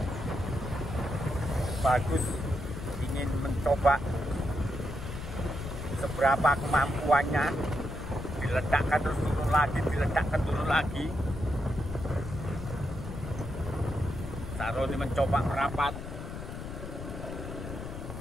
Bagus. Ingin mencoba seberapa kemampuannya. Diledakkan terus turun lagi, diledakkan turun lagi. Saroni mencoba merapat.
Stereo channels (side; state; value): left; noise; rumble, 8 dB below the sound